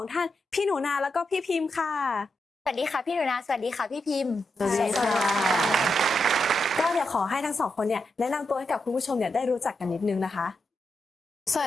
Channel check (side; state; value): both; normal; correlation 0.85